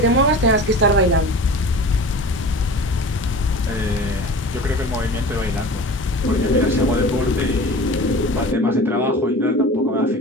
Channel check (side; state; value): both; normal; correlation 0.37